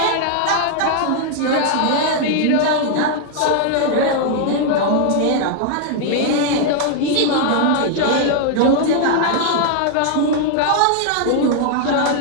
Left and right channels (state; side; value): different; both; correlation 0.00